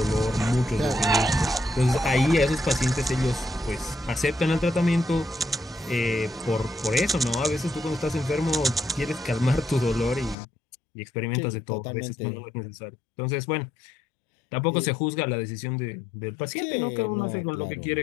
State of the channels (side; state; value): right; drops out; at 10.4 s